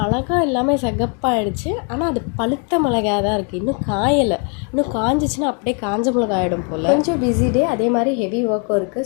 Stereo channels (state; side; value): quieter; right; 38.5 dB